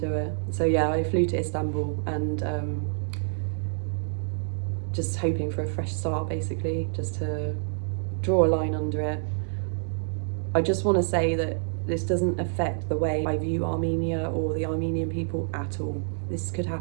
it. So yeah, I flew to Istanbul, and just hoping for a fresh start, basically, just to draw a line under it. I just want to say that this doesn't affect the way I view Armenia or the Armenian people at all. This could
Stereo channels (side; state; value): left; silent; digital silence